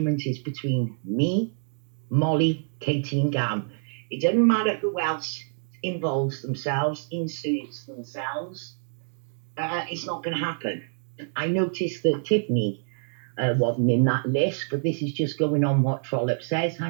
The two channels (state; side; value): silent; left; digital silence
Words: is between me, Molly, Katie and Gam. It doesn't matter who else involves themselves, inserts themselves. It's not going to happen. I noticed that Tiffany wasn't in that list, but this is just going on what Trollope says.